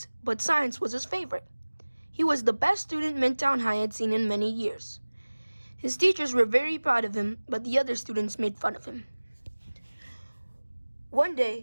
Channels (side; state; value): both; inverted; correlation -1.00